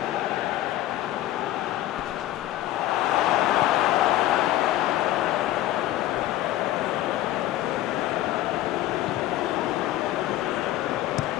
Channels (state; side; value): quieter; right; 14.5 dB